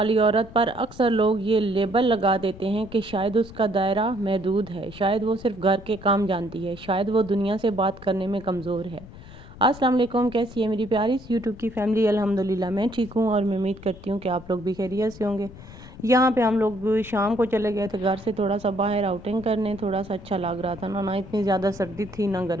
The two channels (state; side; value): noise; left; rumble, 17 dB below the sound